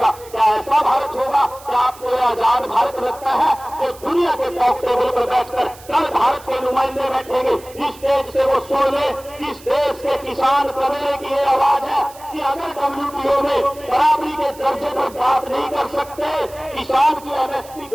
क्या ऐसा भारत होगा? क्या आपको आजाद भारत लगता है? तो दुनिया के टॉप टेबल पर बैठकर कल भारत के नुमाइंदे बैठेंगे, इस देश से वो सुन ले, इस देश के किसान कमेरे की ये आवाज है कि अगर WTO में बराबरी के दर्जे पर बात नहीं कर सकते, किसान की MSP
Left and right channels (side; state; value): right; noise; hiss, 21 dB below the sound